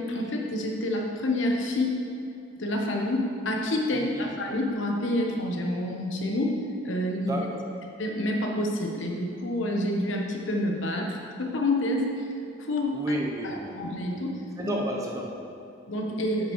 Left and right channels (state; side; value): normal; both; correlation 0.53